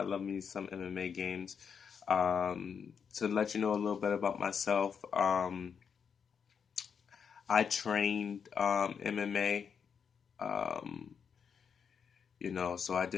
love me some MMA games. To let you know a little bit about myself, I trained MMA. Um, so I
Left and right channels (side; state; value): right; quieter; 6.8 dB